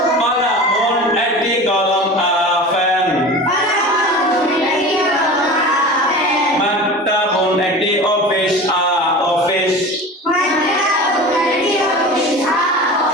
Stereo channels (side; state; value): both; normal; correlation 0.34